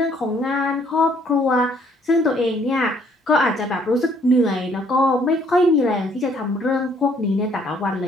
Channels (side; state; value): both; normal; correlation 0.64